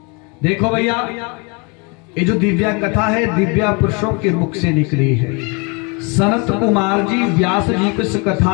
देखो भैया, ये जो दिव्या कथा है दिव्या पुरुषों के मुख से निकली है। सनत कुमार जी व्यास जी को इस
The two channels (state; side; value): quieter; right; 30.9 dB